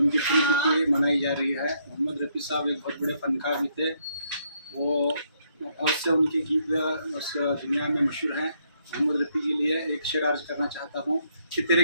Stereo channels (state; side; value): inverted; both; correlation -0.72